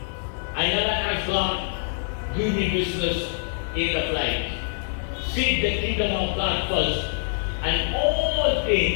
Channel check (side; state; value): right; silent; digital silence